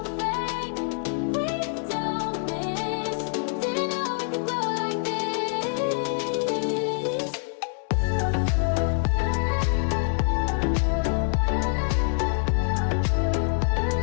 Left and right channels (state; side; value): silent; right; digital silence